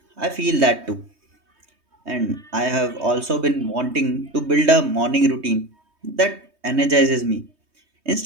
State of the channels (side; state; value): left; late; 3.2 ms